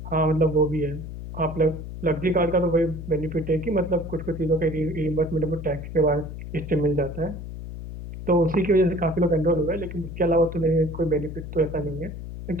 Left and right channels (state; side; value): noise; left; hum, 9 dB below the sound